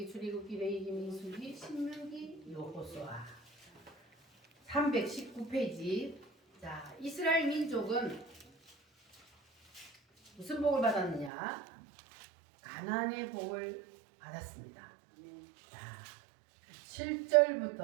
출애굽기, 레위기, 민수기, 신명기, 여호수아 319페이지. 자, 이스라엘 민족은 무슨 복을 받았느냐? 가나안의 복을 받았습니다. 아멘. 자,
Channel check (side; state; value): left; drops out; at 11.3 s